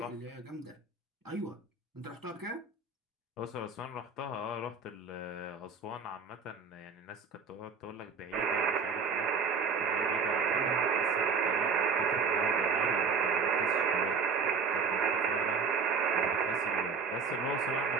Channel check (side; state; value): left; quieter; 5.2 dB